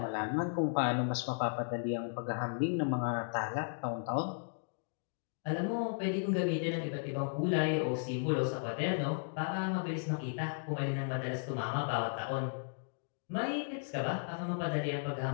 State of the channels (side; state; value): right; silent; digital silence